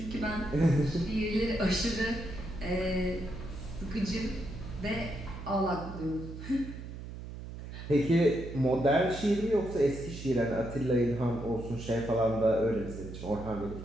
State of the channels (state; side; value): noise; right; hum, 10 dB below the sound